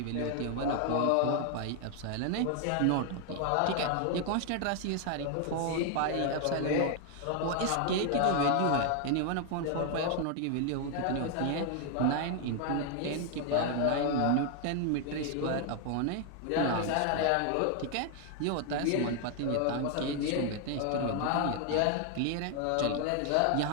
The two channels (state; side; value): different; both; correlation 0.00